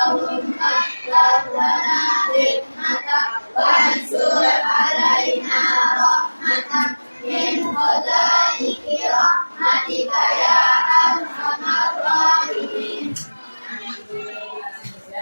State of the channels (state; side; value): inverted; both; correlation -1.00